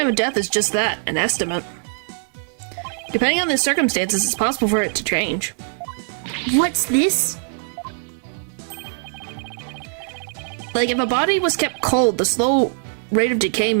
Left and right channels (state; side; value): silent; left; digital silence